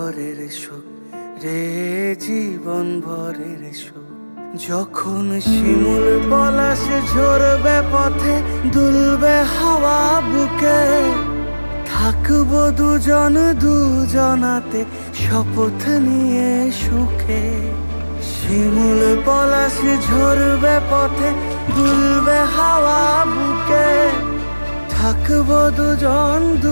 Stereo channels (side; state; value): both; inverted; correlation -1.00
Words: সুখ রে, জীবন ভরের সুখ। যখন শিমুল পলাশে ঝরবে পথে দুলবে হাওয়া বুকে, থাকবো দুজন দুজনাতে শপথ নিয়ে সুখে। শিমুল পলাশে ঝরবে পথে দুলবে হাওয়া বুকে, থাকবো দুজন